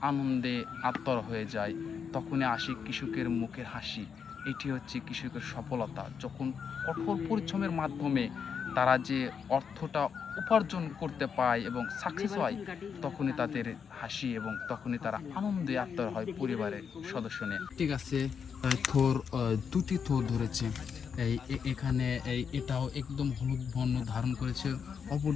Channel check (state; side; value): quieter; right; 6.7 dB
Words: আনন্দে আত্মর হয়ে যায়। তখনই আসে কৃষকের মুখের হাসি। এটি হচ্ছে কৃষকের সফলতা। যখন কঠোর পরিশ্রমের মাধ্যমে তারা যে অর্থটা উপার্জন করতে পায় এবং সাকসেস হয়, তখনই তাদের হাসি এবং তখনই তারা আনন্দে আত্মর হয় পরিবারের সদস্য নিয়ে। ঠিক আছে, থর দুটি থর ধরেছে। এখানে এটাও একদম হলুদ বর্ণ ধারণ করেছে।